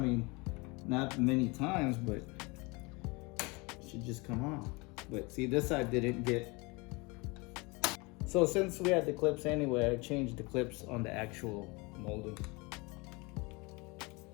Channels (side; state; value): right; quieter; 26.8 dB